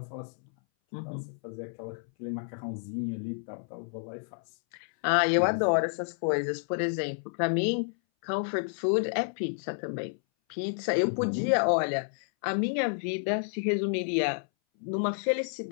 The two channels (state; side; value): silent; right; 58 dB below the other